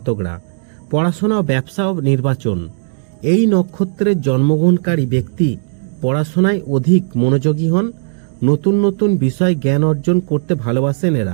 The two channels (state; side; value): silent; left; digital silence